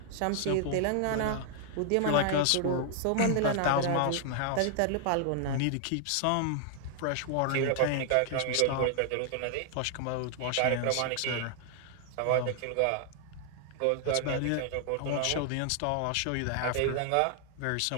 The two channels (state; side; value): different; both; correlation 0.00